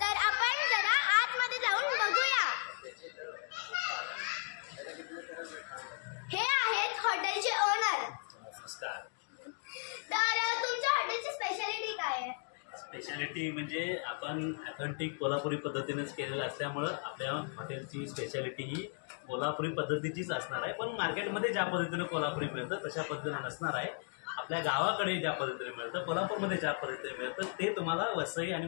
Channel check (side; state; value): right; silent; 54 dB below the other